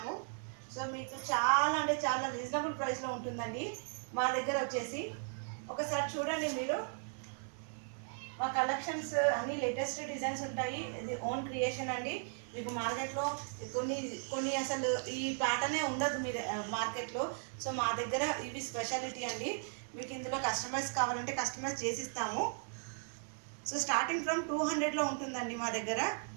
సో మీకు చాలా అంటే చాలా రీజనబుల్ ప్రైస్లో ఉంటుందండి మా దగ్గర వచ్చేసి. ఒకసారి చూడండి మీరు. మా కలెక్షన్స్ అన్ని లేటెస్ట్ డిజైన్స్ ఉంటాయి. ఇది ఓన్ క్రియేషన్ అండి. మీకు మార్కెట్లో కొన్ని కొన్ని అసలు ఈ ప్యాటర్నే ఉండదు మీ మార్కెట్లో. సో మా దగ్గర ఇవి స్పెషాలిటీ అండి. మీకు ఇందులో కస్టమైజ్ కావాలంటే కస్టమైజ్ చేసిస్తాము. సో స్టార్టింగ్ ఫ్రమ్ 200లో ఉంటుందండి మా దగ్గర.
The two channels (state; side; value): silent; left; 53 dB below the other